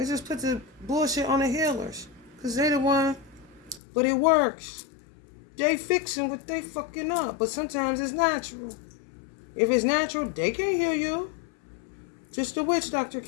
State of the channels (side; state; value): right; drops out; at 3.8 s